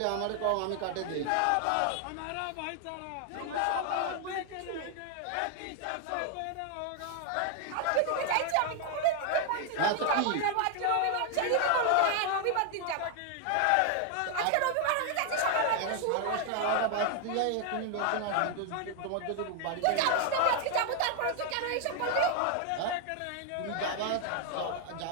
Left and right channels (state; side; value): different; both; correlation 0.00